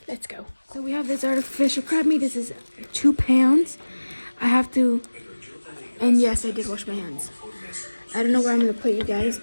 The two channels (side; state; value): both; inverted; correlation -1.00